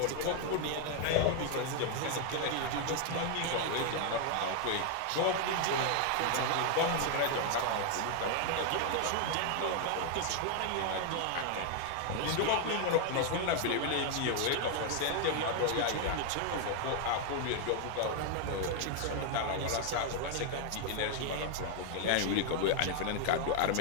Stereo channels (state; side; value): different; both; correlation 0.00